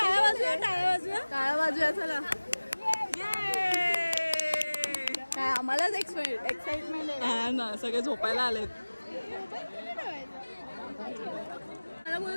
वाजूया चला. काय आम्हालाच एक्साइटमेंट आहे ना. सगळे झोपायला आलेत. मला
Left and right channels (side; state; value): both; inverted; correlation -1.00